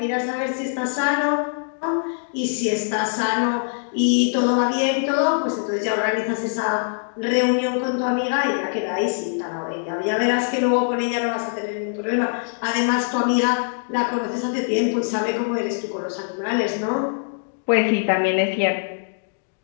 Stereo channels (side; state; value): right; silent; digital silence